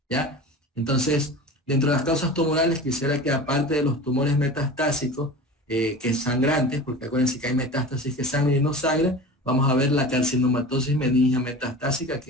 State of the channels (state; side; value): normal; both; correlation 0.34